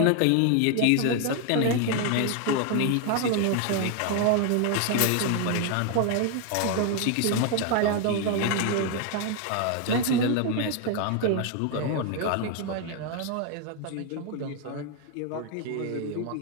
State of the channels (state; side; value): different; both; correlation 0.01